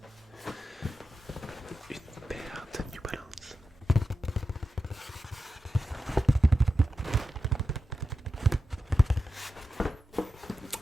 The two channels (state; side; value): normal; both; correlation 0.90